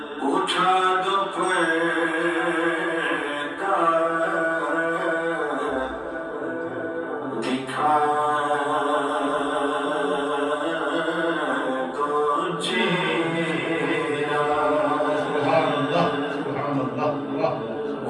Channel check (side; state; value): both; identical; correlation 1.00